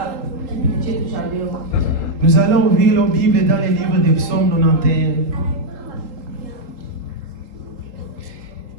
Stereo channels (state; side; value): late; left; 3.8 ms